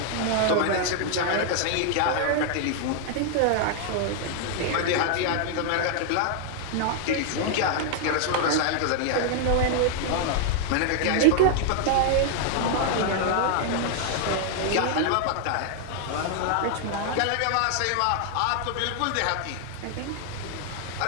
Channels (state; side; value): different; both; correlation 0.00